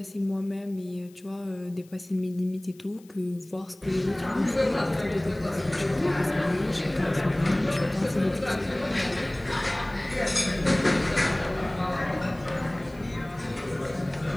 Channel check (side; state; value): left; noise; hiss, 28 dB below the sound